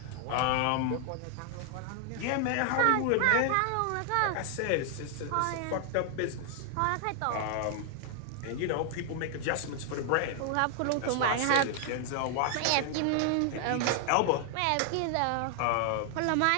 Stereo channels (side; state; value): both; different; correlation 0.00